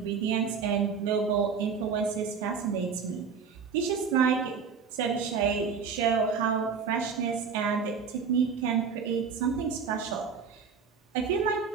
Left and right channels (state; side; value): quieter; left; 6.0 dB